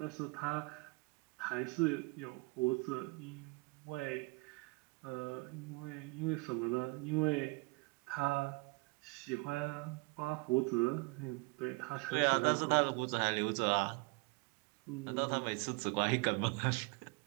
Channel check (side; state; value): left; quieter; 28.4 dB